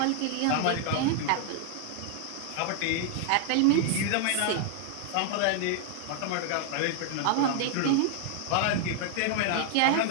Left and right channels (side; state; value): both; different; correlation 0.00